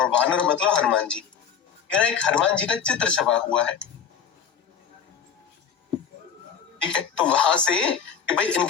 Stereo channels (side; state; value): right; quieter; 7.4 dB